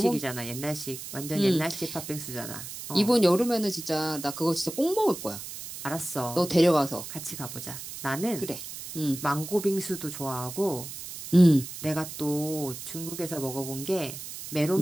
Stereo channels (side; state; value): right; noise; hiss, 10 dB below the sound